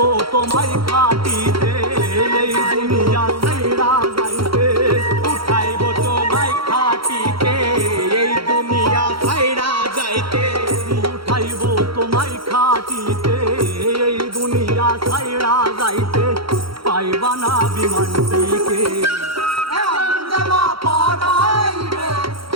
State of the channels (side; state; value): left; late; 0.74 ms